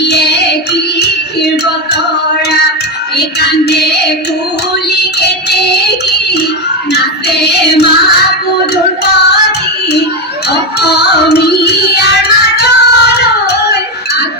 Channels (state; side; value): normal; both; correlation 0.10